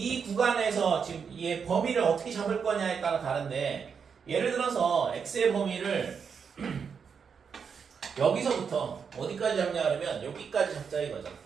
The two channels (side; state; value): left; quieter; 6.4 dB